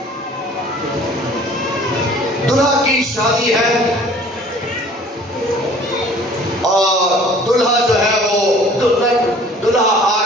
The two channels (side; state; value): both; normal; correlation 0.50